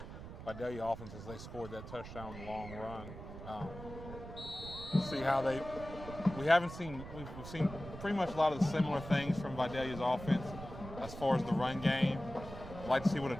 Vidalia offense as they scored that touchdown long run. See how we've seen pretty much a lot of the similar things from Vidalia's offense as far as the run game. I'd like to see what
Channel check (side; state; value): right; noise; rumble, 11 dB below the sound